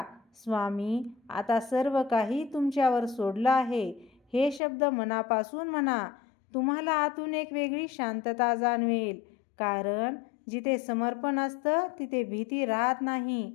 स्वामी आता सर्व काही तुमच्यावर सोडलं आहे. हे शब्द मनापासून म्हणा. तुम्हाला आतून एक वेगळी शांतता जाणवेल, कारण जिथे समर्पण असतं तिथे भीती राहत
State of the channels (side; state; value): right; drops out; at 4.6 s